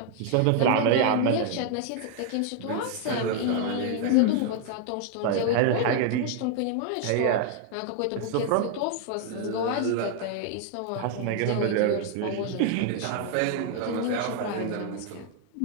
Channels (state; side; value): different; both; correlation 0.00